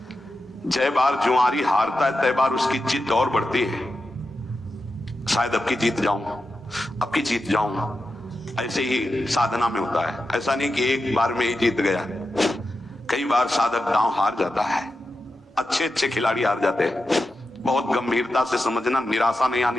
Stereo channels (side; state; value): both; normal; correlation 0.90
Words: जय बार जुआरी हारता है तय बार उसकी जिद और बढ़ती है। शायद अब की जीत जाऊं, अब की जीत जाऊं। ऐसे ही साधना में होता है। ऐसा नहीं कि एक बार में ही जीत गया, कई बार साधक दांव हार जाता है। अच्छे अच्छे खिलाड़ी हार जाते हैं। बहुत गंभीरता से समझना, निराशा नहीं